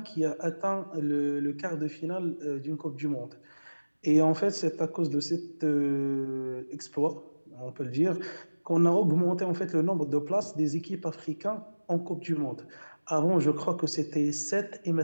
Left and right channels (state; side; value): inverted; both; correlation -1.00